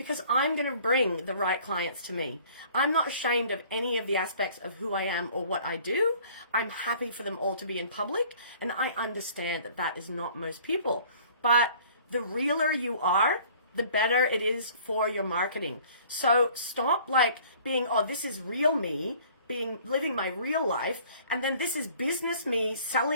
I'm going to bring the right clients to me. I'm not ashamed of any of the aspects of who I am or what I do. I'm happy for them all to be in public, and I understand that that is not most people. But the realer you are, the better it is for your marketing. So stop being, oh, this is real me, living my real life, and then this is business me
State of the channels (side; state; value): both; inverted; correlation -0.52